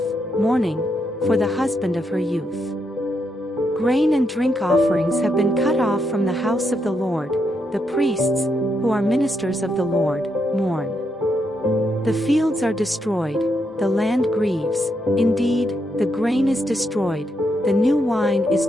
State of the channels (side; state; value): both; normal; correlation 0.80